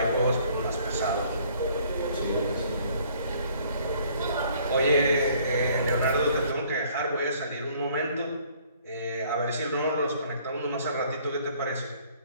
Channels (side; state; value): both; inverted; correlation -0.60